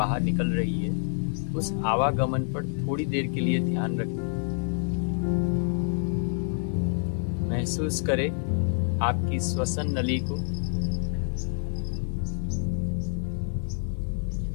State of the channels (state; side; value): silent; right; digital silence